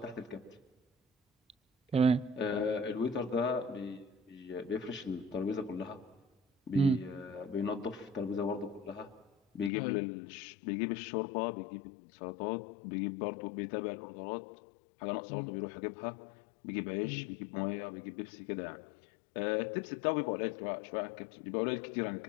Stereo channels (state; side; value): drops out; right; at 9.7 s